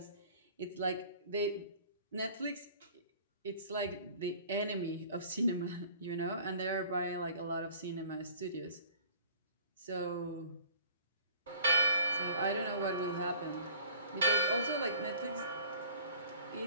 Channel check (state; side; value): inverted; both; correlation -0.49